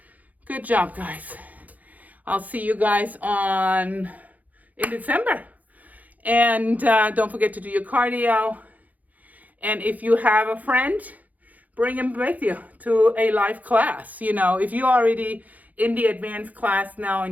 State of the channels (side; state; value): left; late; 0.078 ms